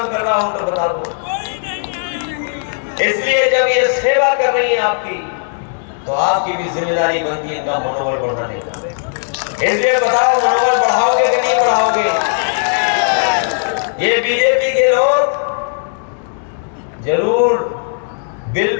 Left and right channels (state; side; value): silent; right; digital silence